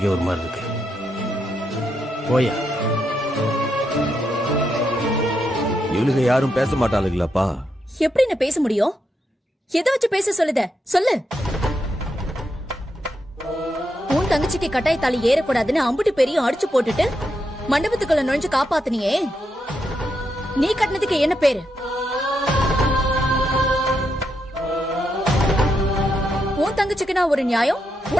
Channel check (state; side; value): normal; both; correlation 0.82